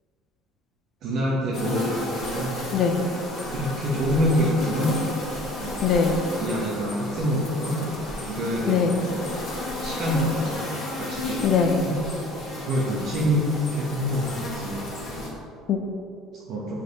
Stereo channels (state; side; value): normal; both; correlation 0.48